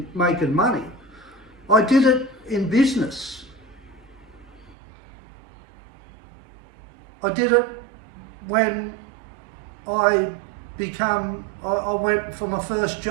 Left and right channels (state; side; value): drops out; left; at 4.8 s